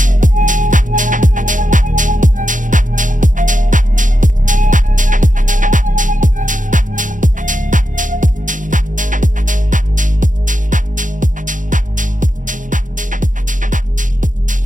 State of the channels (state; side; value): late; left; 0.38 ms